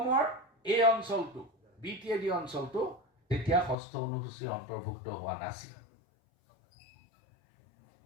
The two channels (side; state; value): right; drops out; at 3.8 s